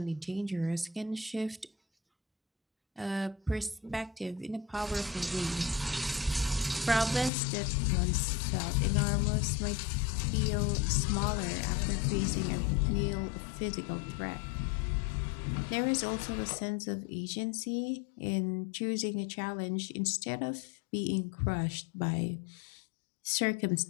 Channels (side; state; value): right; drops out; at 7.3 s